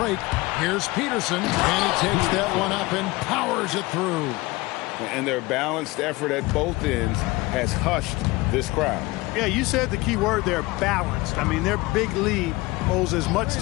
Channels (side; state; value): right; quieter; 21.3 dB